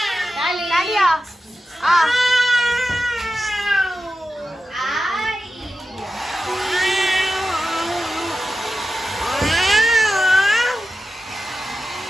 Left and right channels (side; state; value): both; normal; correlation 0.92